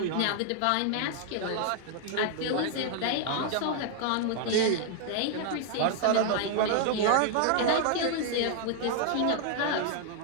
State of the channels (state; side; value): different; both; correlation 0.00